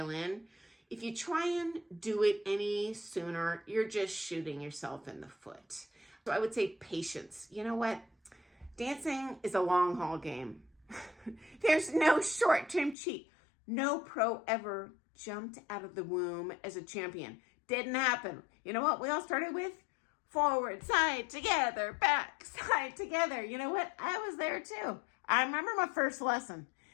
in. If you try and do it any sooner, you're just shooting yourself in the foot. So I would say patience. You know what? Dancing is a long haul game. There's no short-term cheat. No pro ever jumped out of the womb as a champion. Didn't happen. You know what we all started with? Forward, side, together, back, side, together. You know what? I was there too. I remember my first lesson.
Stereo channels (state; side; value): drops out; right; at 13.0 s